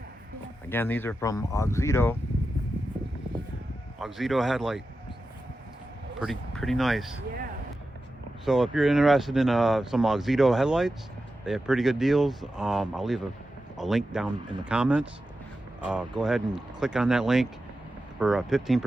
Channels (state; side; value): normal; both; correlation 0.91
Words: Again, these are from Auxito. Auxito headlight. Pretty nice. Yeah. So if you're interested in some Auxito headlights, they have pretty good deals. I'll leave a link down in the comments. Go ahead and click on that link for